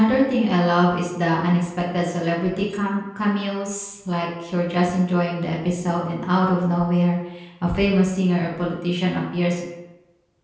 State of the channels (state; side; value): identical; both; correlation 1.00